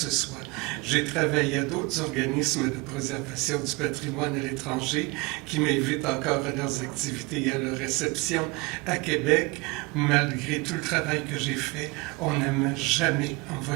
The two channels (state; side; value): quieter; left; 26.1 dB